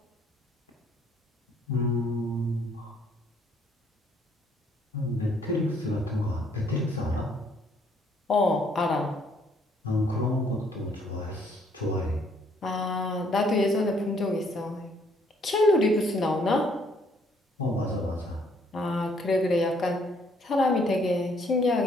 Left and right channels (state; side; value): normal; both; correlation 0.66